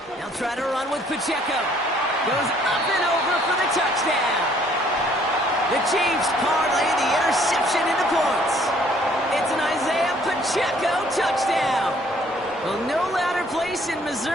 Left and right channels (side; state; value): both; normal; correlation 0.61